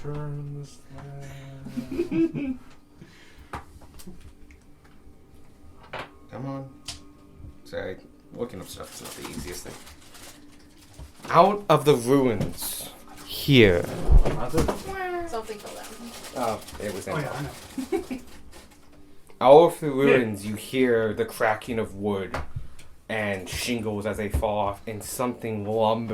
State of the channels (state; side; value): identical; both; correlation 1.00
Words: this land. Come on. Sorry, looking up stuff is not the easiest thing. Out of the ruins, here. Something fell down. Oh, it was Oh empty. yeah, I know. Out of the ruins, you hear the cracking of wood and shingles as they fall off, and something